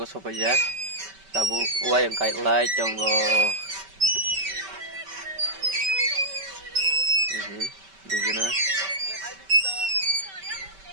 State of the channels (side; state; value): left; late; 5.2 ms